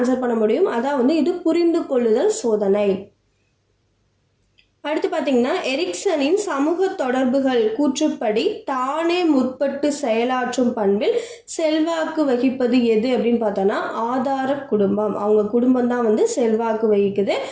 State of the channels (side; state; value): both; identical; correlation 1.00